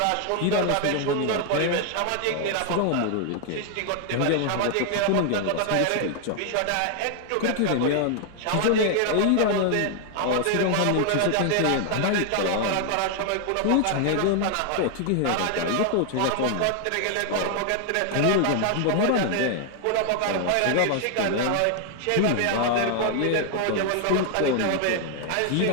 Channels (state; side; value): different; both; correlation 0.00